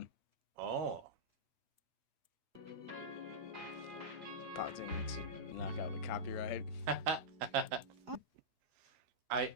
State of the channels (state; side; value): late; left; 4.8 ms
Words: Oh. Pausing to knock out the copyright. I